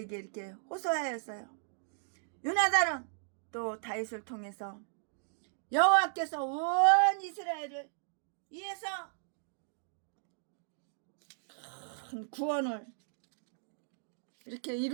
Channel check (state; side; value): silent; left; digital silence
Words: 이렇게 호소하였어요. 요나단은 또 다윗을 통해서 여호와께서 온 이스라엘을 위해서 큰 구원을 이렇게